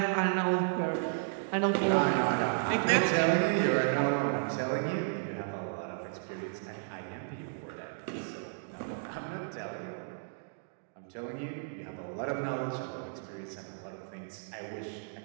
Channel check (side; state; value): left; silent; digital silence